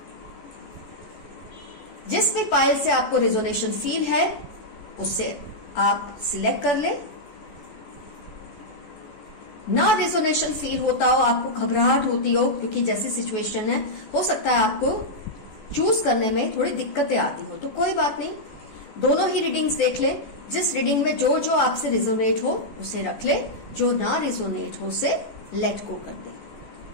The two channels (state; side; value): late; right; 14 ms